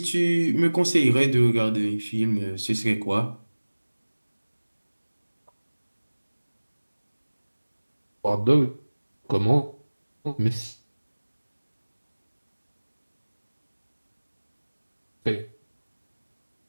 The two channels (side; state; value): both; inverted; correlation -1.00